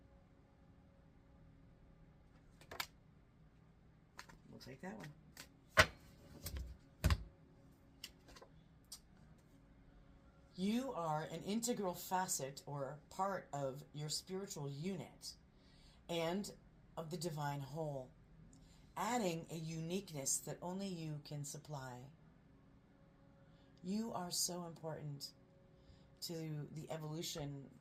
We'll take that one. You are an integral facet or part of your spiritual unit and of the divine whole, adding a uniqueness that only you can supply. You are so important to the evolution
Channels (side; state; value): both; identical; correlation 1.00